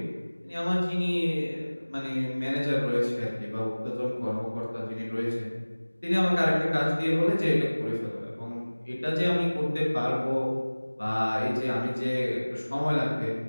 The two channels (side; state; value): both; inverted; correlation -1.00